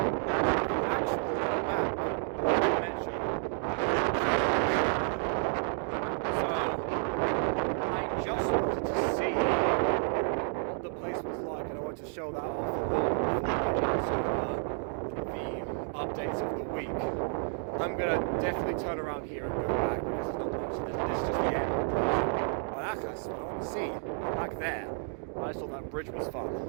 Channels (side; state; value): left; silent; 55 dB below the other